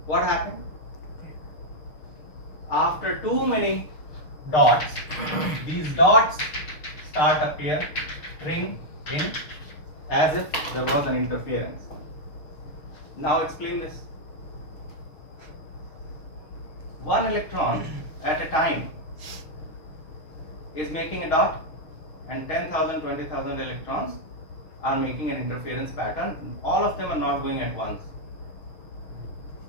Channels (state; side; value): late; right; 6.6 ms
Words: What happened? After too many dots, these dots start appearing in as if there was an interference. Now explain this. One electron at a time is making a dot, and 10,000, 20,000 electrons are making an interference pattern. All of them are not going at once.